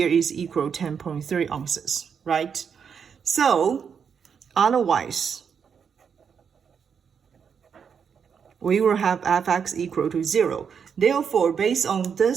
is equal 10.3 ounces, right? So otherwise, we will have fx equal to 0. Therefore, based on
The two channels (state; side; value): quieter; left; 6.9 dB